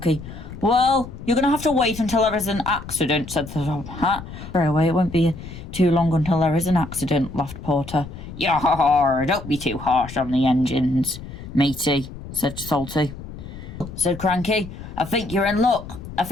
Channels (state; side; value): noise; left; rumble, 12 dB below the sound